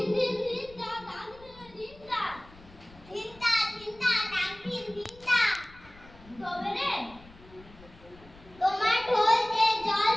দিন দিন দা দাগ দিন দা চিন্তা চিন্তা ডাকিন চিন্তা তবে রে তোমার ঢোল যে জল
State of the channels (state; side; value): noise; left; rumble, 23 dB below the sound